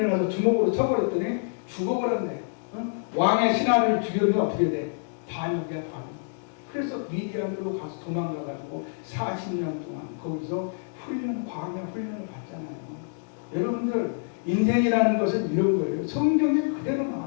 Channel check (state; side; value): silent; right; digital silence